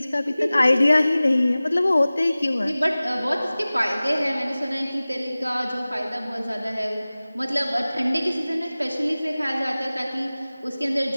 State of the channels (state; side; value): inverted; both; correlation -0.98